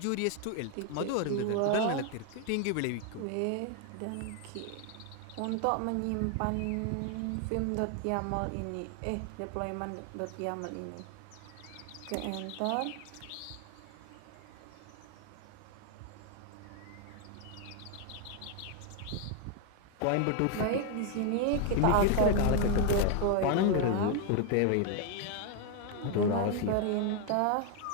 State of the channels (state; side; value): different; both; correlation 0.00